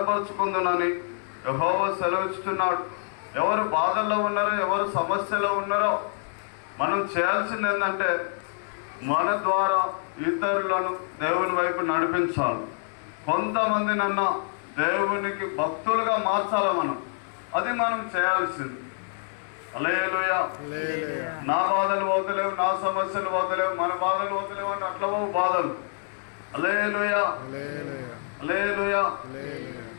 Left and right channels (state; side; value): silent; right; digital silence